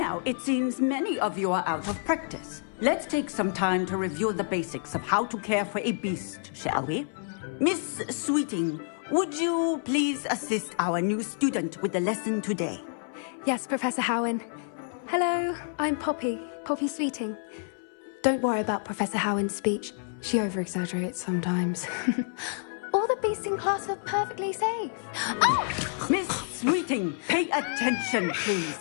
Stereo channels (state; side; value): silent; right; 59 dB below the other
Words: it seems many of you are out of practice. Let's take some time to review the basics of how to care for a beast, shall we? Miss Sweeting, would you please assist our new student with the lesson today? Yes, Professor Howen. Hello, I'm Poppy Sweeting. Don't worry about Professor Howen's speech. She over-exaggerates sometimes. All the beasts in class are perfectly safe. Oh! Miss Sweeting, pay attention, please.